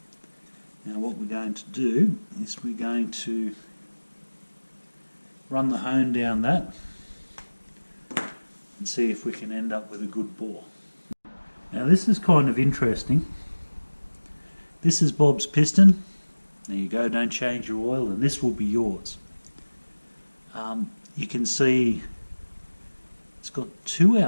Now what we're going to do is we're going to run the hone down that and see if we can end up with a good bore. Now this is kind of interesting. This is Bob's piston. There you go, don't change your oil, and this will be yours. You can see it's got two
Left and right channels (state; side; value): inverted; both; correlation -1.00